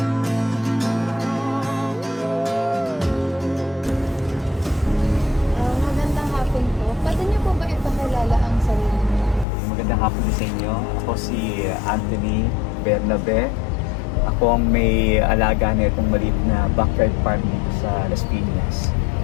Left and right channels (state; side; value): drops out; right; at 9.5 s